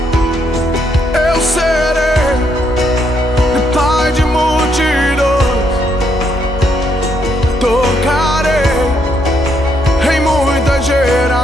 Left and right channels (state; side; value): normal; both; correlation 0.75